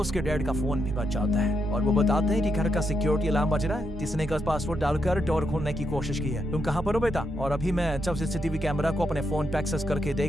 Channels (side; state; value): both; normal; correlation 0.81